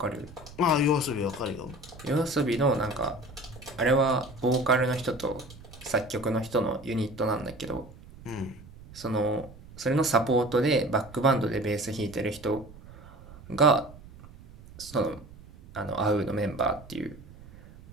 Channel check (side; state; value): right; noise; rumble, 19 dB below the sound